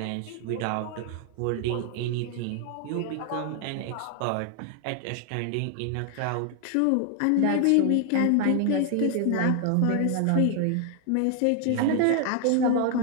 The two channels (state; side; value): different; both; correlation 0.00